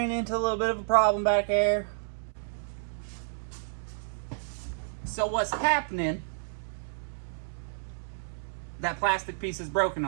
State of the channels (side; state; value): left; silent; 58 dB below the other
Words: into a little bit of a problem back there. So what's happening, that plastic piece is broken